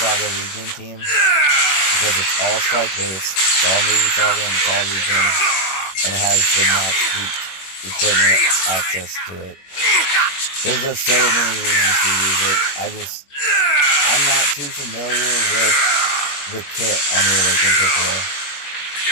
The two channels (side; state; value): right; late; 21 ms